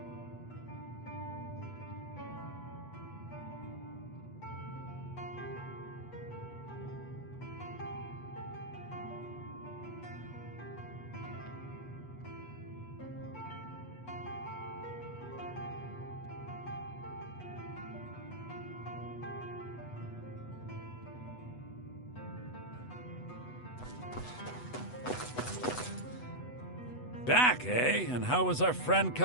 Back, eh? And how was our friend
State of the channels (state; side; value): late; right; 8.1 ms